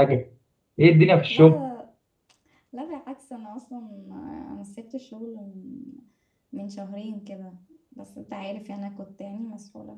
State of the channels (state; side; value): identical; both; correlation 1.00